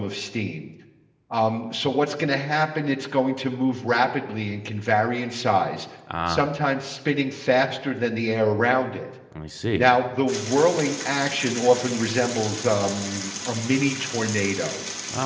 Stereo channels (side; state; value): both; identical; correlation 1.00